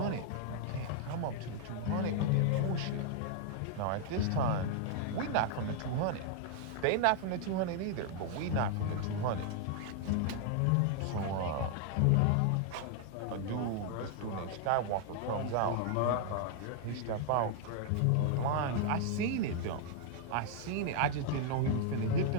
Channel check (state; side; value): different; both; correlation 0.00